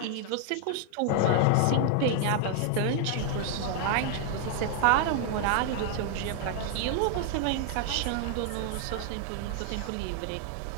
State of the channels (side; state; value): both; different; correlation 0.00